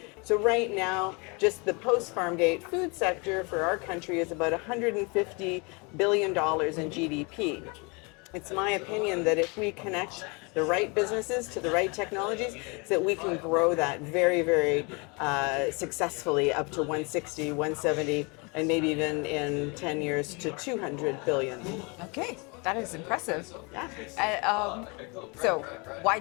So right now, just the post-farm gate food sector for our country is about $150 billion in GDP. It's my opinion that if we connect the right businesses to the right technologies, so that we can grow that very, very successfully up to 160, 170, and maybe even in 10 years to 200 billion. Okay, that is impressive. Yeah. So, why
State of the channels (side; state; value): right; quieter; 30.2 dB